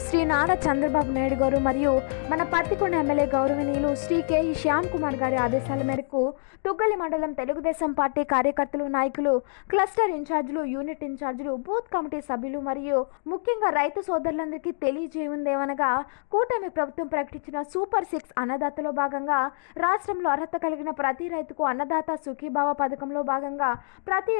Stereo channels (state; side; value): silent; right; digital silence